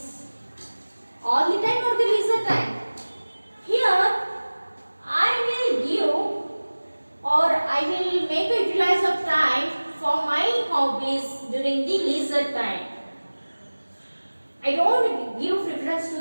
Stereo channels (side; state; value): both; inverted; correlation -1.00